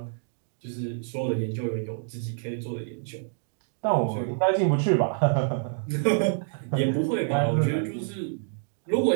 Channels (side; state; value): left; silent; digital silence